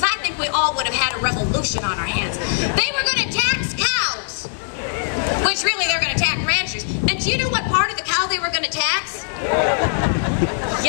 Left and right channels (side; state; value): right; silent; digital silence